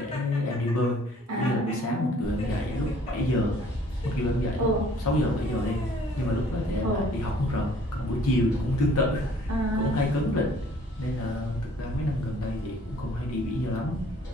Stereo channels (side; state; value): both; normal; correlation 0.57